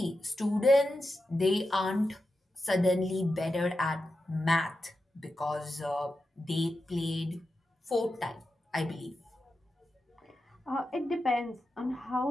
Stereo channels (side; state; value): both; normal; correlation 0.89